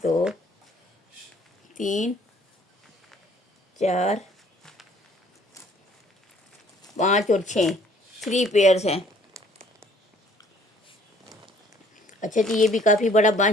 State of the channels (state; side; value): normal; both; correlation 0.58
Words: 2 3 4 5 और 6, 3 पेयर्स हैं। अच्छा जी, ये भी काफ़ी बड़ा